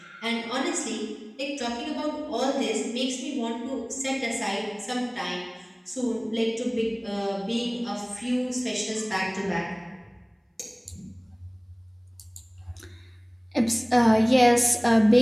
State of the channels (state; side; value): identical; both; correlation 1.00